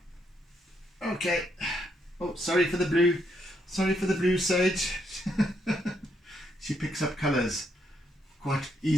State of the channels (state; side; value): normal; both; correlation 0.75